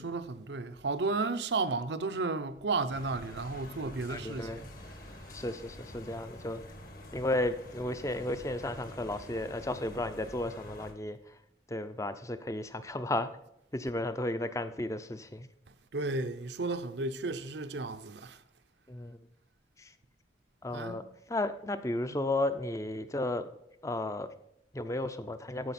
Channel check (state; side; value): normal; both; correlation 0.40